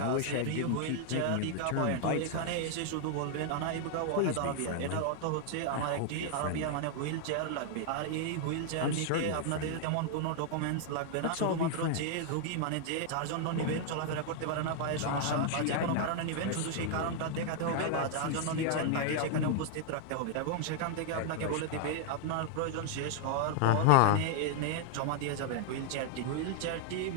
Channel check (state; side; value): different; both; correlation 0.00